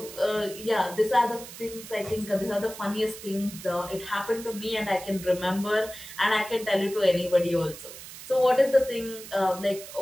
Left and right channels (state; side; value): noise; right; hiss, 14 dB below the sound